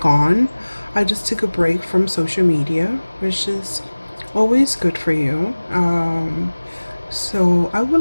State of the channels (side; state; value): both; inverted; correlation -1.00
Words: I just took a break from social media, which is always good for you. So I